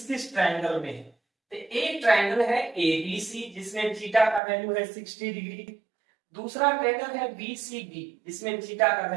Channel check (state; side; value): drops out; left; at 4.4 s